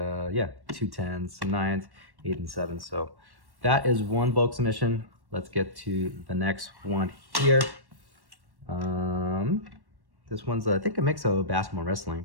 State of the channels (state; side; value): late; left; 1.1 ms